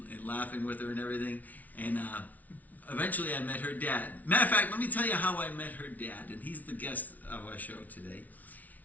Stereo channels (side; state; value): right; late; 0.075 ms